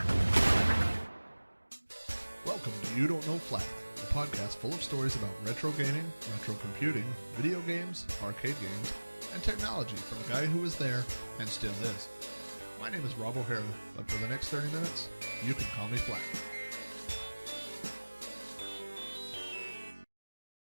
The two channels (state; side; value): inverted; both; correlation -1.00